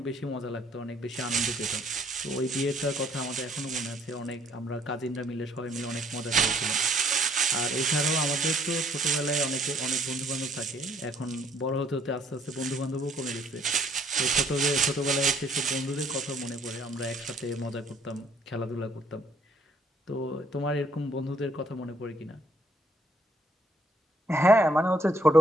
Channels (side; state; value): both; normal; correlation 0.64